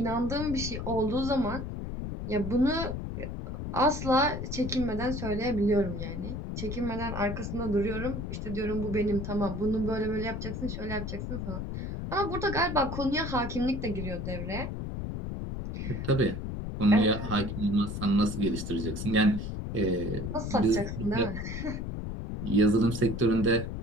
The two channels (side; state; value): left; noise; rumble, 5 dB below the sound